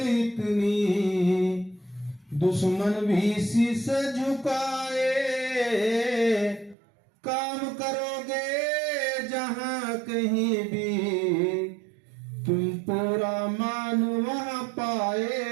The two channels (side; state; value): left; drops out; at 6.8 s